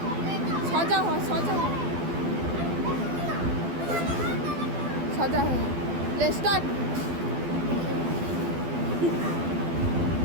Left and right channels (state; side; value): late; left; 12 ms